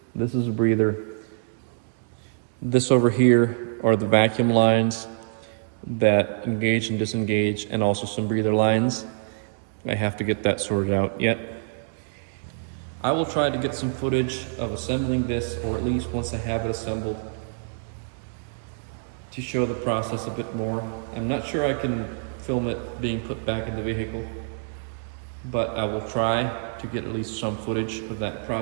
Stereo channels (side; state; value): left; silent; digital silence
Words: This is a breather. This over here are the vacuum lines that engage and disengage, and also some breather lines. I have to get that sorted out yet. I will try to get some footage of assembling this, or at least once I have it assembled, to show the process a bit more. I'm not sure I can film it being put back in the vehicle, but I will try to get at least some footage of that